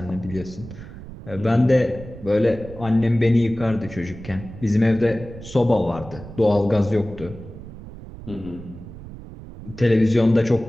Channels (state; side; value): noise; right; rumble, 14 dB below the sound